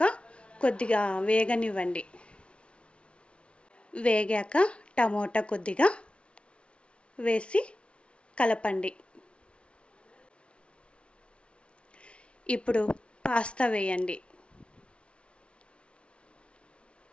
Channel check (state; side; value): late; right; 0.059 ms